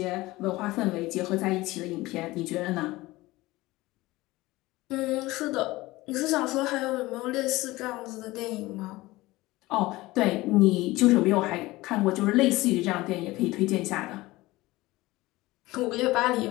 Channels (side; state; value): right; quieter; 19.4 dB